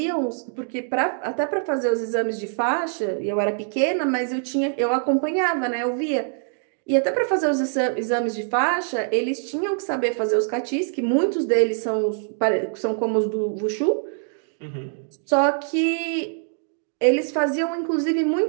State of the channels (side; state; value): left; silent; digital silence